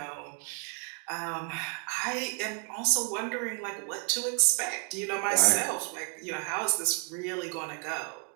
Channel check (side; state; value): left; quieter; 36.7 dB